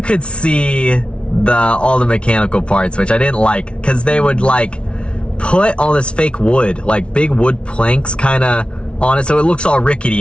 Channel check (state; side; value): late; right; 0.059 ms